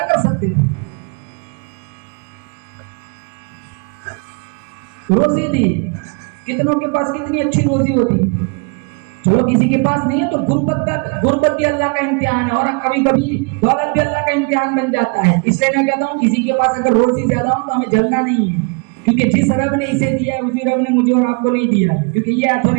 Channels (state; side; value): quieter; left; 34.8 dB